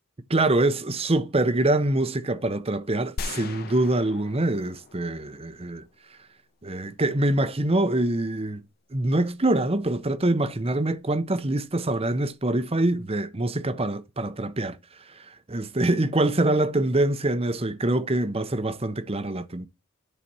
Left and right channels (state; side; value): normal; both; correlation 0.63